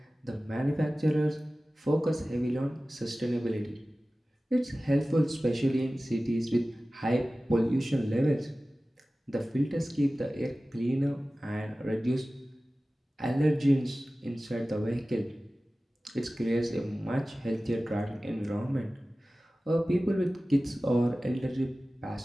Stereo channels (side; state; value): both; normal; correlation 0.96